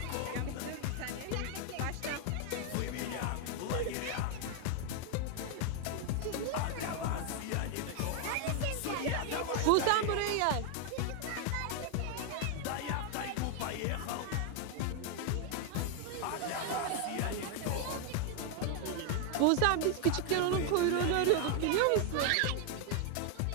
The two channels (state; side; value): different; both; correlation 0.00